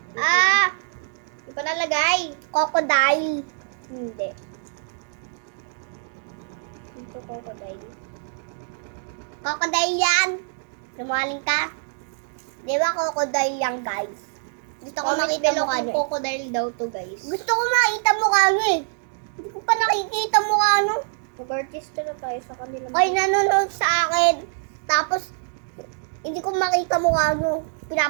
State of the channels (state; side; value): silent; left; digital silence